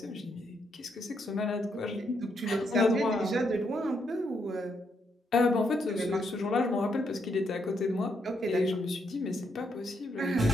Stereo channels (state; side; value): normal; both; correlation 0.77